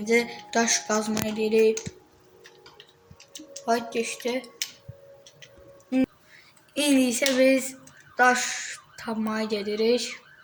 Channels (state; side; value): identical; both; correlation 1.00